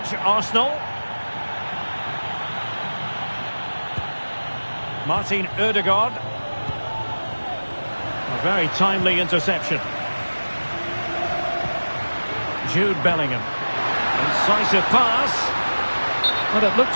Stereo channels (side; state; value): both; inverted; correlation -1.00